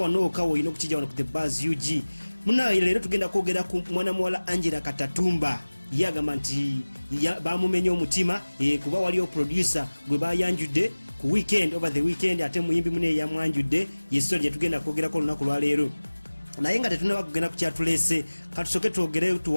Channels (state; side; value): inverted; both; correlation -1.00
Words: okawo olina okukijja wano ku the buzz UG. Munaye leero tugenda kwogera ku mwana muwala Angella Katatumba. Yagamba nti bamumenya omutima kuba waliyo producer gwe bayanjudde ku weekend over the weekend ate muyimbi mune yamwanjudde yeso lye tugenda kwogerako olunaku lwa leero. Naye nga tetunaba kugenda ku kyatulese katusoke twogere